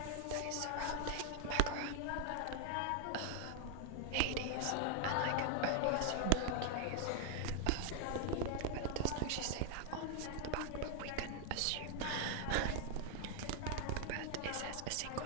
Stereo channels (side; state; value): both; different; correlation 0.00